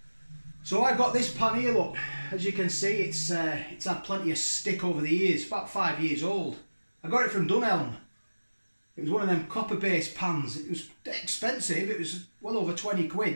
So I've got this pan here, look. As you can see, it's had plenty of stick over the years. About 5 years old. I got it from Dunelm. It was one of them copper-based pans. It was expensive. It was well over 20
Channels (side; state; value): both; inverted; correlation -1.00